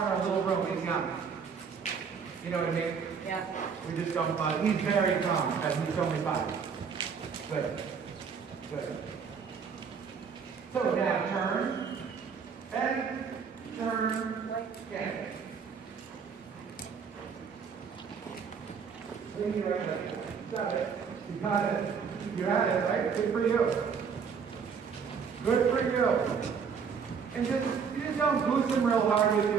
a little room. He's young. You know what I mean? Yeah. We just don't bother. He's very calm, because he's only 5. Good. Good. So now turn, and turn, again. Swing your right leg. Got it. You got it. You had it, right? Good for you. Good for you. And you just don't boost him real hard with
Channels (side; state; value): left; quieter; 6.3 dB